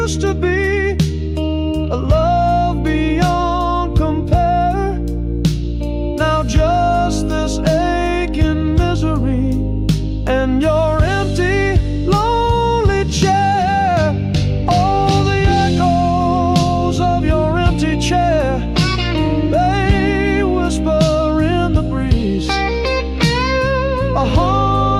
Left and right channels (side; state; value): both; identical; correlation 1.00